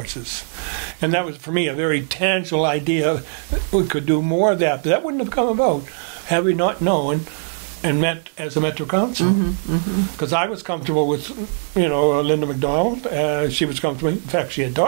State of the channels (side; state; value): left; silent; 64 dB below the other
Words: And that was, for me, a very tangible idea. We could do more of that, but that wouldn't have come about had we not known and met as a Metro Council. Because I was comfortable with, Linda MacDonald. She was comfortable. In fact, she had